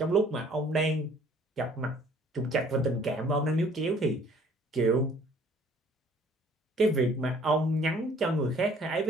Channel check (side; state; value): both; normal; correlation 0.56